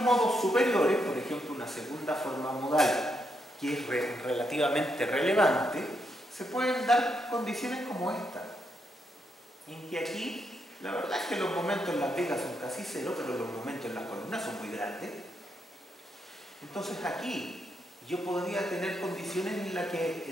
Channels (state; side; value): normal; both; correlation 0.80